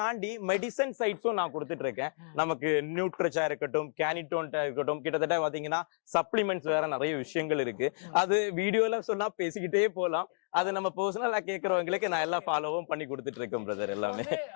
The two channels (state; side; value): silent; right; digital silence